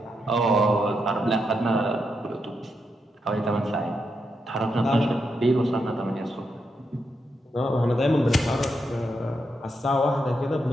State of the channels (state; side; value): normal; both; correlation 0.83